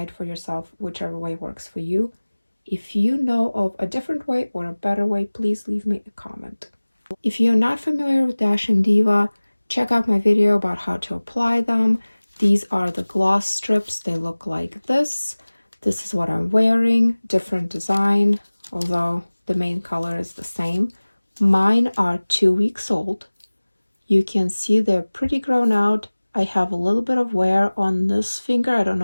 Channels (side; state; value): both; inverted; correlation -1.00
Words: for yourself whichever way works for you. If you know of a different way or a better way, please leave me a comment. If you're not familiar with Dashing Diva, check out my video about how to apply them. These are the gloss strips. They look like this. This is what I'm wearing, different design, although the main color is the same. Mine are 2 weeks old. You can see they're pretty grown out. I have a little bit of wear on this finger. I don't